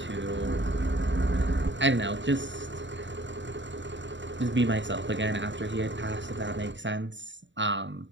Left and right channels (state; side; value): late; left; 0.54 ms